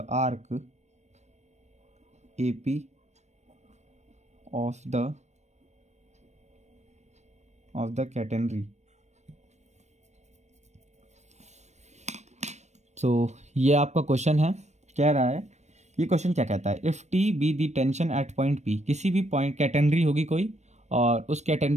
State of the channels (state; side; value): late; left; 0.33 ms